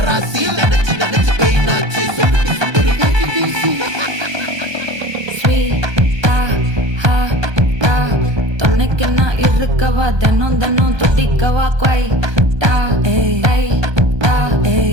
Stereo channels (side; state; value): left; late; 1.2 ms